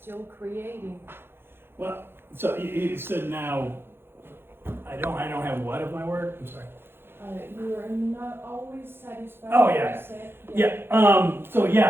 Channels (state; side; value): late; left; 0.11 ms